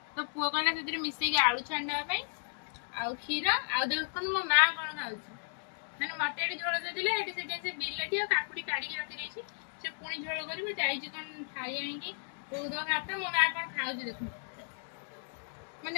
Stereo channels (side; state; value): right; silent; digital silence